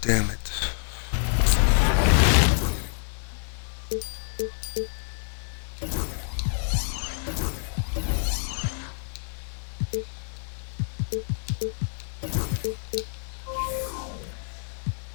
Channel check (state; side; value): silent; right; digital silence